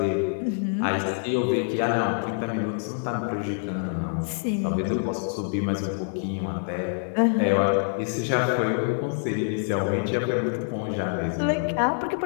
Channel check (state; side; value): silent; right; digital silence